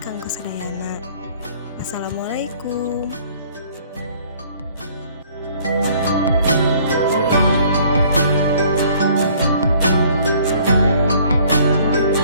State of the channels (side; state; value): both; inverted; correlation -0.58